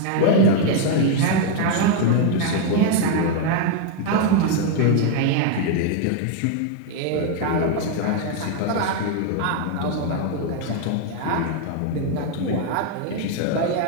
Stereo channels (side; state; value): both; different; correlation 0.00